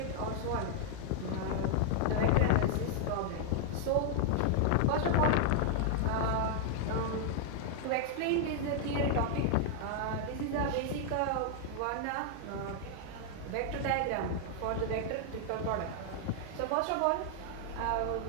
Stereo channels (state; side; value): different; both; correlation 0.00